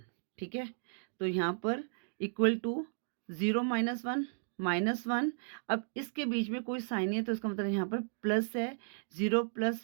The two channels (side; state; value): left; silent; digital silence